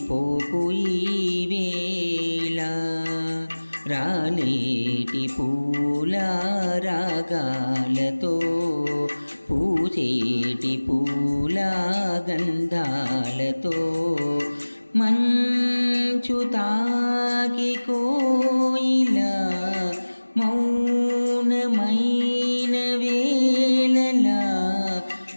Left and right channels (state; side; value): inverted; both; correlation -1.00